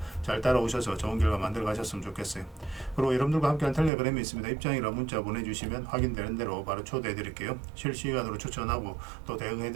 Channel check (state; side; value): drops out; left; at 3.9 s